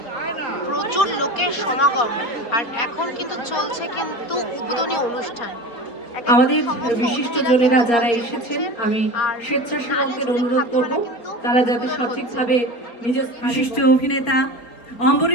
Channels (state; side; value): late; right; 4.3 ms